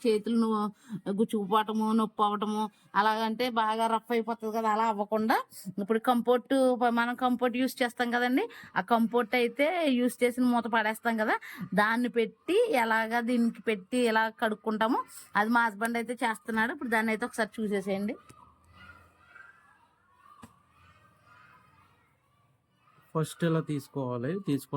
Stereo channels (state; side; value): identical; both; correlation 1.00